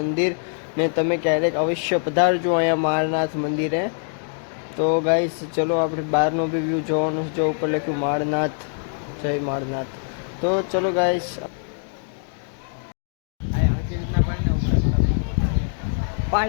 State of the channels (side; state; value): right; silent; 63 dB below the other